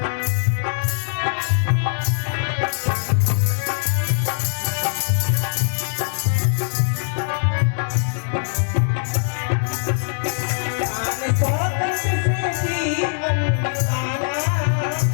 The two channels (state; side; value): silent; right; digital silence